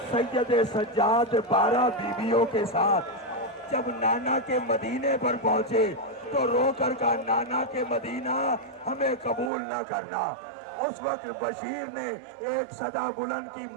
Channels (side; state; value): left; drops out; at 9.5 s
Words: سید سجاد 12 بیویوں کے ساتھ، جب نانا کے مدینے پر پہنچے تو رو کر کہا نانا کے مدینہ ہمیں قبول نہ کرنا۔ اس وقت بشیر نے ایک صدا بلند کی،